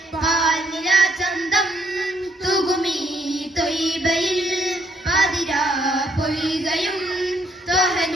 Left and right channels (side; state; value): both; normal; correlation 0.71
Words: പാൽനില ചന്തം തുകുമീ ത്വയ്ബയിൽ പാതിരാ പൊയ്കയും